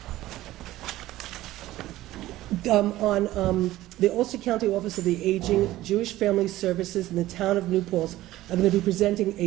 On the Ulster County Office of the Aging, Jewish Family Services in the town of New Paltz are going to be presenting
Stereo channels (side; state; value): left; quieter; 15.7 dB